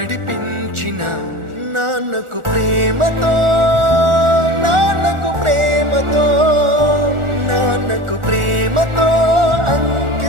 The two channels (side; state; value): left; late; 1.4 ms